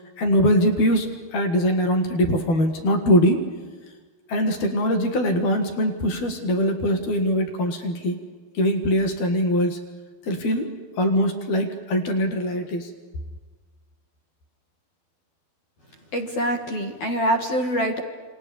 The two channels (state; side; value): late; right; 12 ms